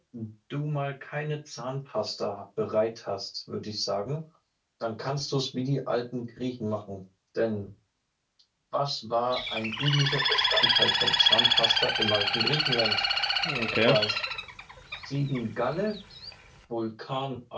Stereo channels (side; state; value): both; identical; correlation 1.00